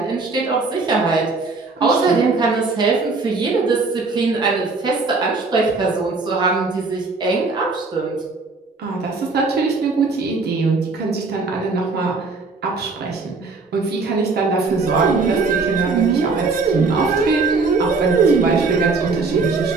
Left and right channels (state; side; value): quieter; left; 4.0 dB